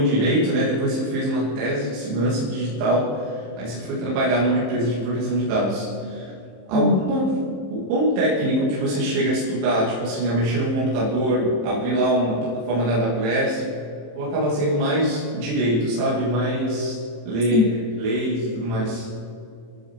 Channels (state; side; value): late; left; 27 ms